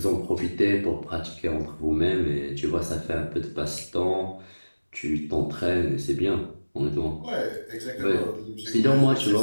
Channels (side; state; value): both; inverted; correlation -1.00